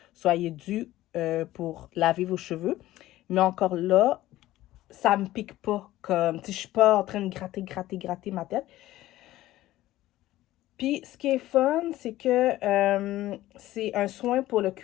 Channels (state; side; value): quieter; right; 15.6 dB